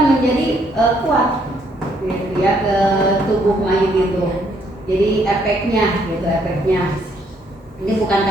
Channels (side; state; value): both; normal; correlation 0.69